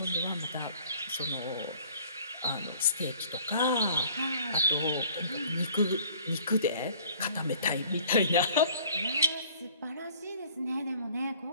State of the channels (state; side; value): inverted; both; correlation -0.54